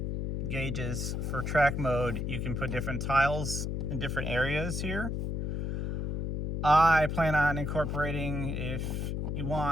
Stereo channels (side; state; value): left; noise; hum, 1 dB below the sound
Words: gauges for track mode, you can put different tiles in different areas here. I plan on incorporating, if you